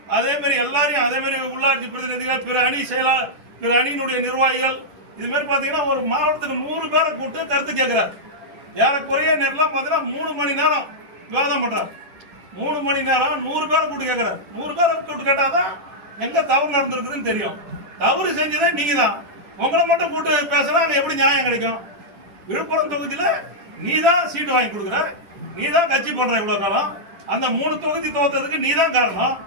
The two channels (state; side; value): late; left; 10 ms